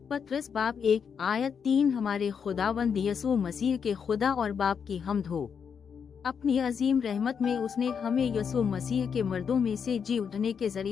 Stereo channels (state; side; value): quieter; right; 6.8 dB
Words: पत्रस बाब 1 आयत 3 हमारे खुदावंद यसू मसीह के खुदा और बाप की हम्द हो। अपनी अजीम रहमत में उसने हमें यसू मसीह के मर्दों में से जी उठने के